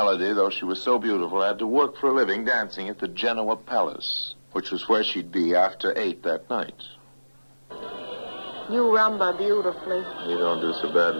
though she was so beautiful, had to work for a living dancing at the Genoa Palace, which was where she'd be after 8 that night. You rumba beautifully. You don't do so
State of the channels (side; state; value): both; inverted; correlation -1.00